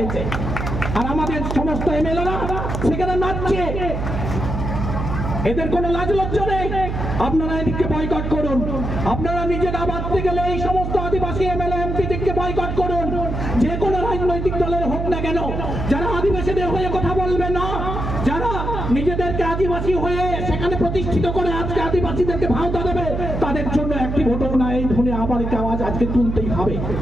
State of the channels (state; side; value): noise; right; hum, 3 dB below the sound